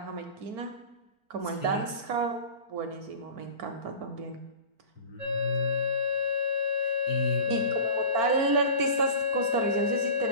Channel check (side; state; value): left; late; 4.5 ms